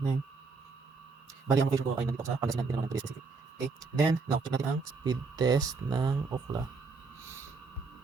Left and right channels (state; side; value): quieter; left; 4.3 dB